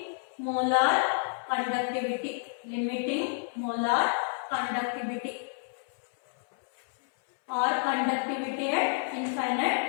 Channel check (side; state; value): right; silent; 58 dB below the other